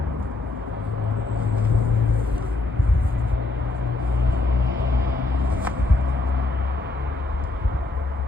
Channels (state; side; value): quieter; right; 3.3 dB